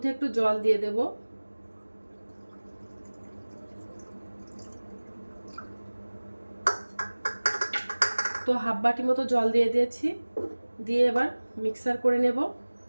একটু জল দিয়ে দেব। তো হাফ বাটি মতো জল দিয়ে দিয়েছি, দিয়ে এবার মিক্সার করে নেব।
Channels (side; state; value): both; inverted; correlation -1.00